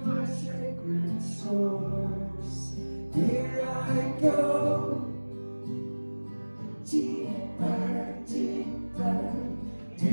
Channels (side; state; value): both; inverted; correlation -1.00